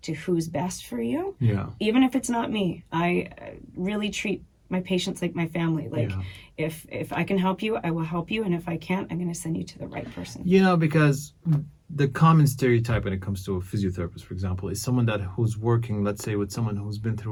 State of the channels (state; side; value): identical; both; correlation 1.00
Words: to who's best for you, Yeah. even if it's not me. I really treat my patients like my family. Like Yeah. if I can help you, I will help you, and if I can't, I'm going to send you to the right person. You know, because the common stereotype when it comes to a physiotherapist, for example, is someone who's working, let's say, with someone who's been